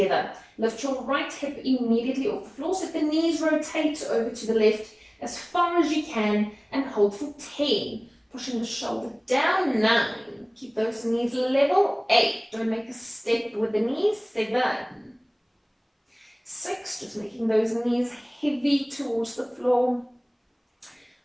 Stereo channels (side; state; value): both; identical; correlation 1.00